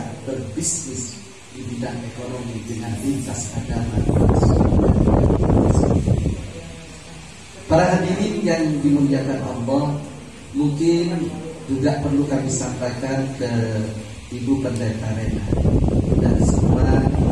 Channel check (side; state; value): both; identical; correlation 1.00